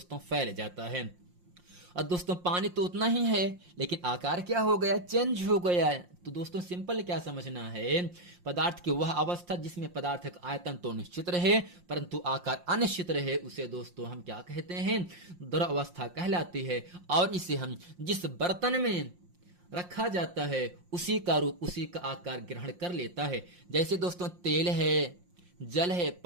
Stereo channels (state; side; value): late; left; 5.6 ms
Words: फैल जाता है। और दोस्तों पानी तो उतना ही है लेकिन आकार क्या हो गया? चेंज हो गया है। तो दोस्तों सिंपल क्या समझना है? पदार्थ की वह अवस्था जिसमें पदार्थ का आयतन तो निश्चित रहे परंतु आकार अनिश्चित रहे, उसे दोस्तों हम क्या कहते हैं? द्रव अवस्था कहलाती है। और इसे हम जिस बर्तन में रखा जाता है उसी का रूप, उसी का आकार ग्रहण कर लेता है। जैसे दोस्तों तेल है, जल है,